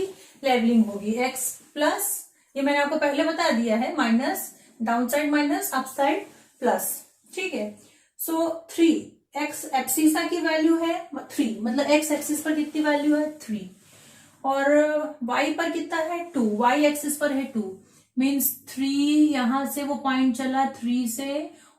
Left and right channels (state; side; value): identical; both; correlation 1.00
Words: लेवलिंग होगी, एक्स प्लस, ये मैंने आपको पहले बता दिया है, minus, down side minus, up side plus, ठीक है। सो 3 एक्स एब्सिसा की वैल्यू है 3, मतलब एक्स एक्सिस पर कितनी वैल्यू है 3, और y पर कितना है 2, y एक्सिस पर है 2, मीन्स 3 यहां से वो पॉइंट चला 3 से,